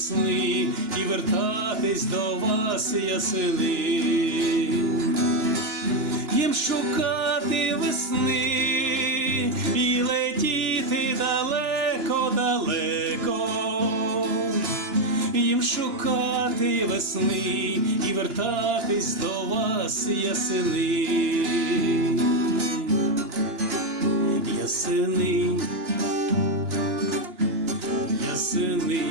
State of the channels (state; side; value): late; left; 2.9 ms